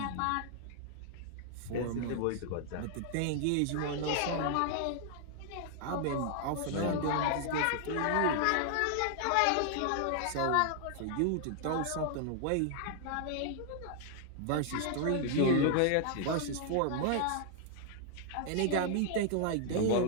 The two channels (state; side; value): different; both; correlation 0.00